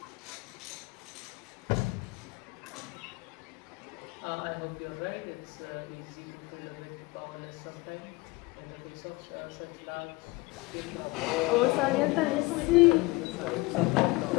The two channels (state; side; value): quieter; right; 23.2 dB